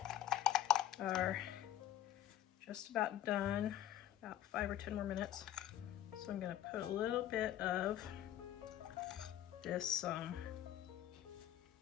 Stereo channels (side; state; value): right; quieter; 12.5 dB